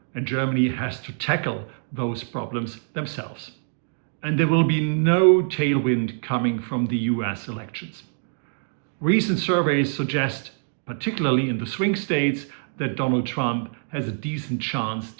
And Germany has to tackle those problems themselves. And there will be no tailwind coming from the US elections. Recent surveys suggest, particularly in the swing states, that Donald Trump has a decent chance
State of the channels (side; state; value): left; silent; digital silence